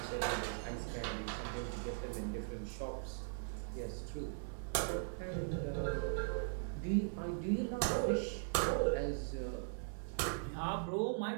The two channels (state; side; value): silent; left; digital silence